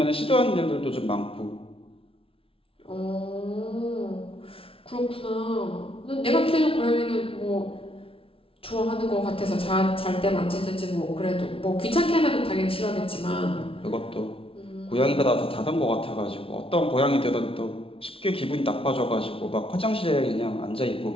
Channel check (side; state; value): right; late; 0.26 ms